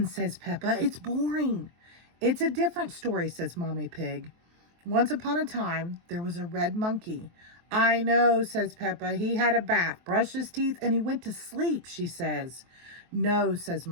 says Peppa. It's boring. It's a different story, says Mommy Pig. Once upon a time, there was a red monkey. I know, says Peppa. He had a bath, brushed his teeth, and he went to sleep, she says. No, says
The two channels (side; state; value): left; late; 23 ms